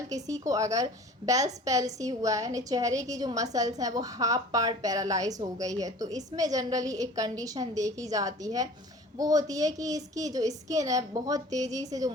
किसी को अगर बेल्स पैल्सी हुआ है, यानी चेहरे की जो मसल्स हैं वो हाफ पार्ट पैरालाइज हो गई है, तो इसमें जनरली एक कंडीशन देखी जाती है, वो होती है कि इसकी जो स्किन है बहुत तेज़ी से जो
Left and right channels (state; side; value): normal; both; correlation 0.44